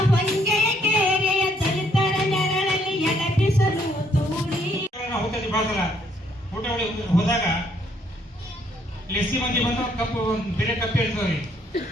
ಹೊಂಗೆಯ ಕೇರೆಯ ದಲಿತರ ನೆರಳಲ್ಲಿ ಎಡಬಿಸಲು ತೂರಿ ಹೋಗ್ತದೆ ಭಾಳ ಸಲ ಊಟ ಹೋದಾಗ ಲೆಸ್ಸಿ ಮಂದಿ ಬಂದು ಕಪ್ಪು ಬೇರೆ ಕಪ್ಪು ಇರ್ತವ್ರಿ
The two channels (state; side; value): normal; both; correlation 0.68